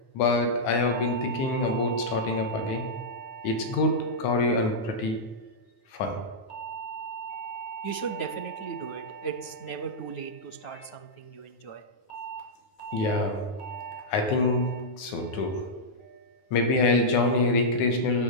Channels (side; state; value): right; late; 9.4 ms